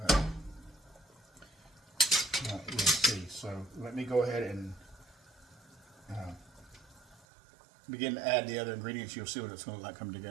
you'll see. So let me go ahead and begin to add the other ingredients. You'll see what it's going to look like come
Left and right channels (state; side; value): drops out; left; at 7.2 s